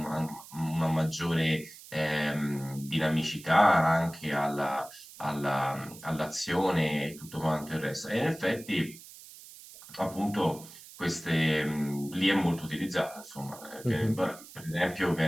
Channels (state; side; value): noise; right; hiss, 18 dB below the sound